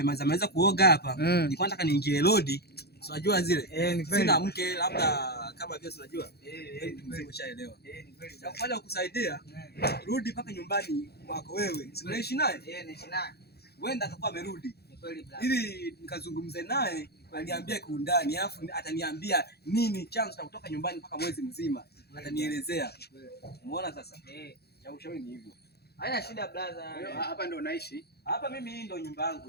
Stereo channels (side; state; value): right; late; 0.47 ms